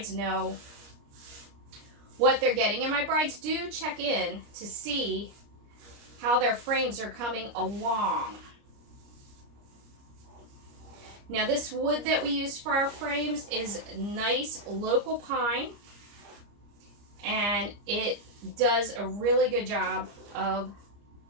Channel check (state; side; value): late; left; 29 ms